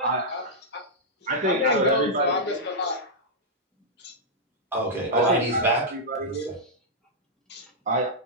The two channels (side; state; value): both; normal; correlation -0.08